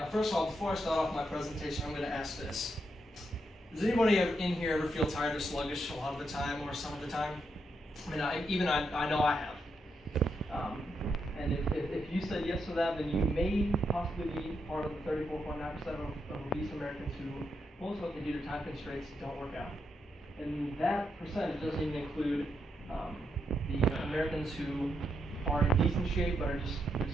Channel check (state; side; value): normal; both; correlation 0.81